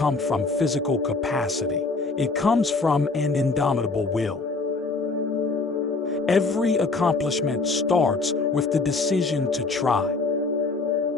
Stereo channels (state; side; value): quieter; right; 3.8 dB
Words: from physical capacity. It comes from an indomitable will. Every accomplishment starts with the decision to try.